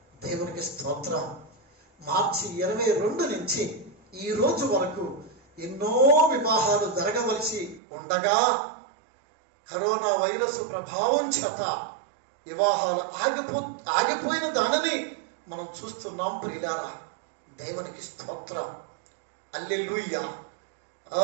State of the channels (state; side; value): drops out; left; at 7.8 s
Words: దేవునికి స్తోత్రం. మార్చి 22 నుంచి ఈ రోజు వరకు ఎన్నో వివాహాలు జరగవలసి ఉండగా కరోనా వైరస్ ప్రభావం చేత వివాహాలు ఆగిపోయిన దానిని మనం చూస్తున్నాం ప్రియులారా. దేవునికి స్తోత్రం. హల్లెలూయా,